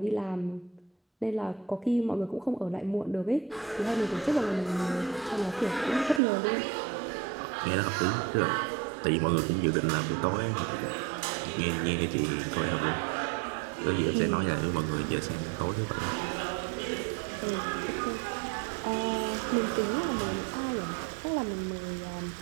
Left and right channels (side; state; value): left; drops out; at 6.2 s